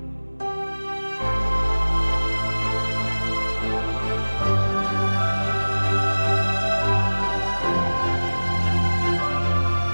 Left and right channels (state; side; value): inverted; both; correlation -1.00